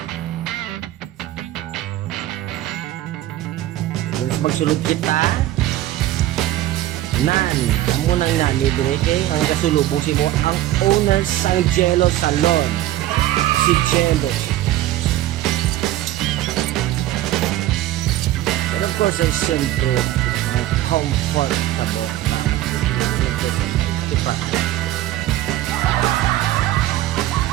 Gusto magsulod kita. Nan, amo nang nami direte ang kasulubong si mo ang owner sang Jello Salon. Si Jello. Pero of course, ay siyempre, ang comfortable ka na diba?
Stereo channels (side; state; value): left; quieter; 14.5 dB